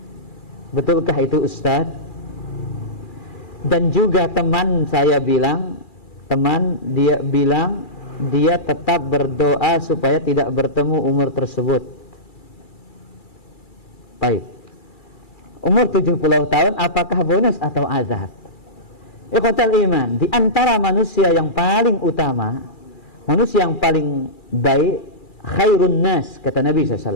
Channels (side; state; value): right; late; 2.3 ms